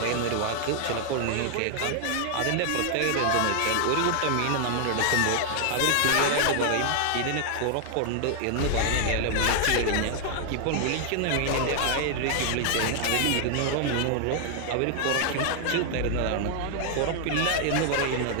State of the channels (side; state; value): both; different; correlation 0.00